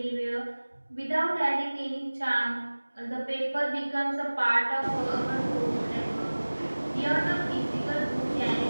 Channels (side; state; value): both; inverted; correlation -1.00